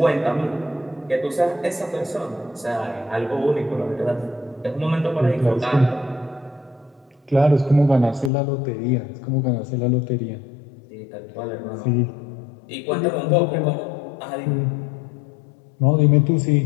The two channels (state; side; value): drops out; right; at 8.3 s